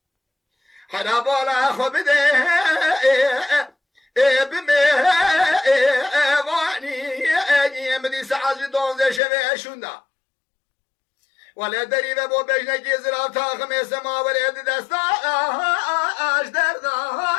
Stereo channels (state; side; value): drops out; right; at 9.2 s